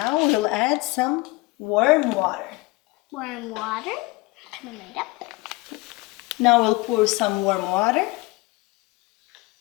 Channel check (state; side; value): quieter; right; 23.0 dB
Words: we'll add some warm water. warm water. Coming right up. Now we'll pour some warm water.